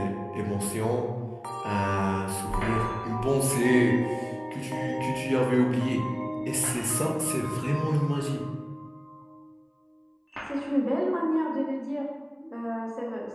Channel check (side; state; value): both; identical; correlation 1.00